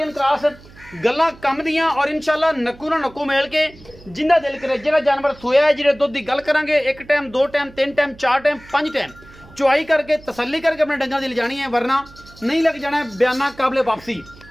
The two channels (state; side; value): noise; right; hum, 22 dB below the sound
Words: क्रॉस गल्लां कम दियां और इंशाल्लाह नक्कू ना नक्कू मेल के जिंदा दिल करे जिहड़ा जानवर सोया है जिहड़े दुध की गल करांगे एक टाइम दो टाइम तीन टाइम चार टाइम पांच टाइम चुआई करके तसल्ली करके अपने डंगा दी ले जानी है वरना नहीं लग जाना है बयाना काबले वापसी।